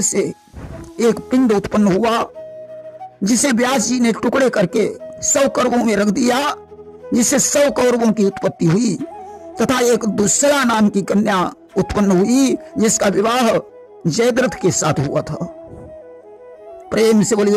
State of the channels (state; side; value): identical; both; correlation 1.00